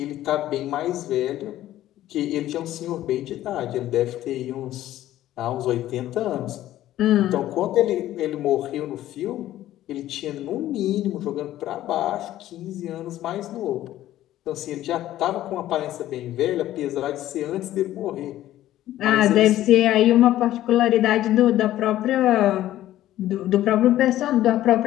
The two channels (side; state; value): right; quieter; 13.7 dB